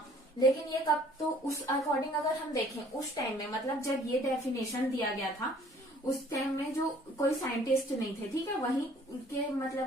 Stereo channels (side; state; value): both; normal; correlation 0.56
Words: लेकिन ये कब, तो उस अकॉर्डिंग अगर हम देखें उस टाइम में, मतलब जब ये डेफिनेशन दिया गया था उस टाइम में जो कोई साइंटिस्ट नहीं थे, ठीक है, वहीं के